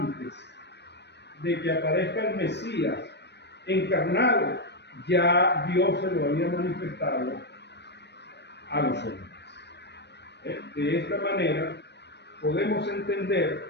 de que aparezca el Mesías encarnado, ya Dios se lo había manifestado a los hombres. De esta manera, podemos entender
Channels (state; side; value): late; right; 0.50 ms